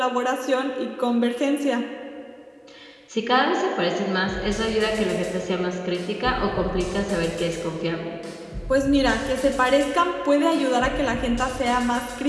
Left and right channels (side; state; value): both; identical; correlation 1.00